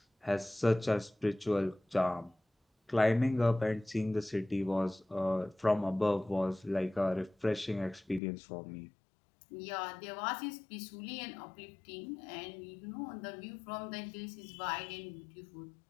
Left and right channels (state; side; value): drops out; right; at 8.2 s